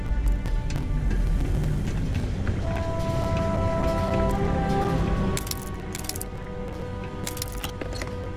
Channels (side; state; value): both; identical; correlation 1.00